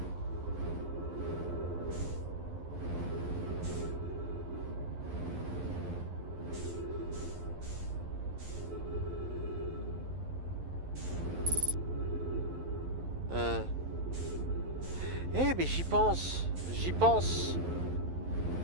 Eh mais j'y pense. J'y pense.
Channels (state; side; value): late; left; 11 ms